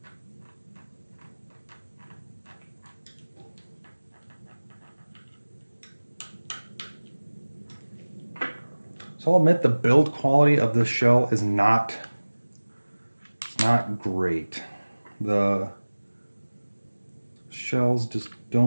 So I'll admit the build quality of this shell is not great. The shells just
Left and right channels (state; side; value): inverted; both; correlation -1.00